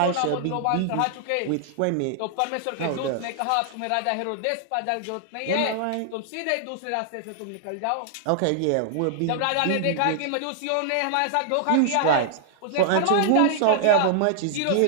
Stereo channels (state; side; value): different; both; correlation -0.01